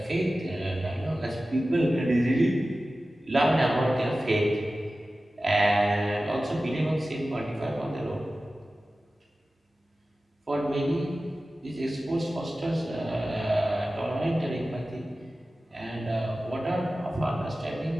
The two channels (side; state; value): both; normal; correlation 0.95